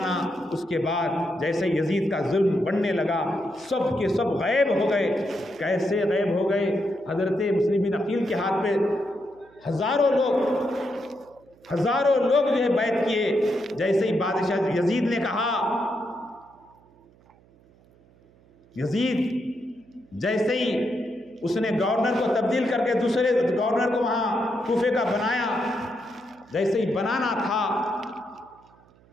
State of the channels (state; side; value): noise; right; hum, 29 dB below the sound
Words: اس کے بعد جیسے یزید کا ظلم بڑھنے لگا سب کے سب غائب ہو گئے۔ کیسے غائب ہو گئے؟ حضرت مسلم بن عقیل کے ہاتھ پہ ہزاروں لوگ جو ہے بیعت کیے۔ جیسے ہی بادشاہ یزید نے کہا، یزید جیسے ہی اس نے گورنر کو تبدیل کر کے دوسرے گورنر کو وہاں کوفے کا بنایا، جیسے ہی بنانا تھا